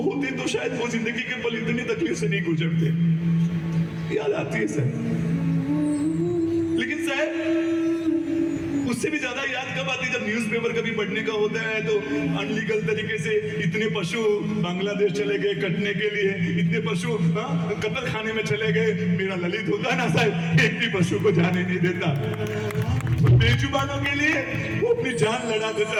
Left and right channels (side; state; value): both; identical; correlation 1.00